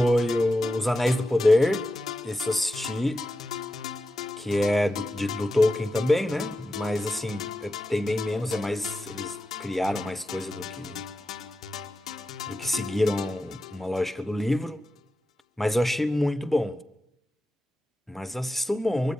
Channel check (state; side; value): normal; both; correlation 0.91